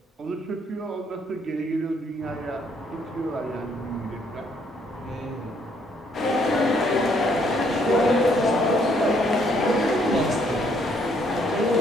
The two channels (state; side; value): normal; both; correlation 0.68